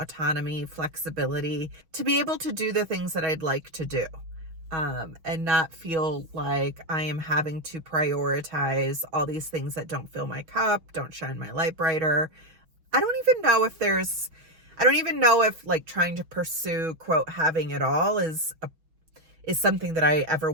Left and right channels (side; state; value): left; late; 6.2 ms